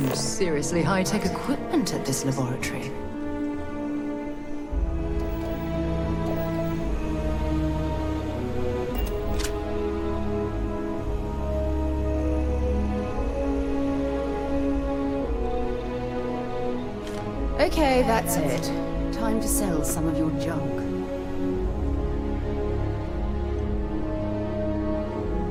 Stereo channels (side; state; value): both; identical; correlation 1.00